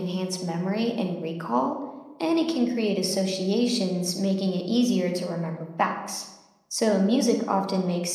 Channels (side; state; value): both; identical; correlation 1.00